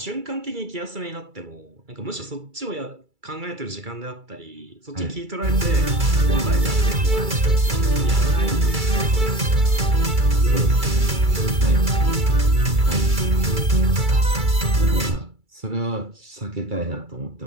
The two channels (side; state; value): left; late; 2.3 ms